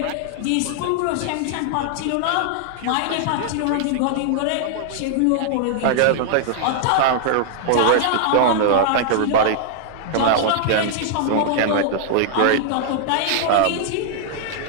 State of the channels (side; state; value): both; different; correlation -0.01